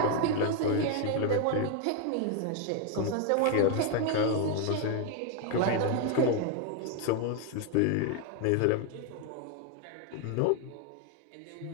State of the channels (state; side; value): different; both; correlation 0.01